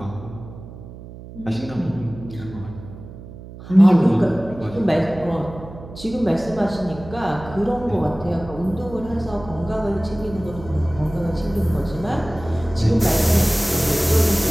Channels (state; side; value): noise; right; hum, 15 dB below the sound